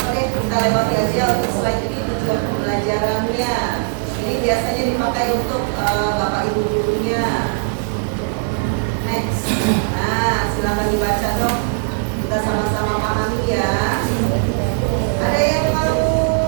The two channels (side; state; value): left; silent; 67 dB below the other